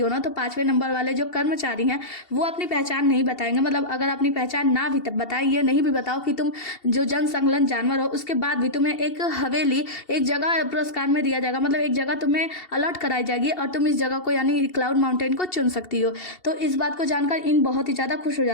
ना तो 5वें नंबर वाले जो कर्मचारी हैं वो अपनी पहचान नहीं बताएंगे, मतलब अगर अपनी पहचान ना भी बताएं, ये नहीं भी बताओ कि तुम जो जन संलग्न जानवर हो, उसके बाद भी तुम्हें एक हवेली, एक जगह पुरस्कार में दिया जाएगा, मतलब एक जगह तुम्हें अलॉट कराई जाएगी और तुम इस जगह को यानी क्लाउड माउंटेन को चुन सकती हो। तो इस बात को जानकर इन बहुत ही ज़्यादा खुश हो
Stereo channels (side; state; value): right; late; 2.7 ms